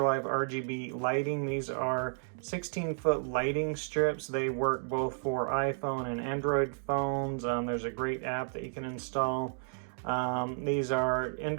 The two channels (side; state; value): left; silent; digital silence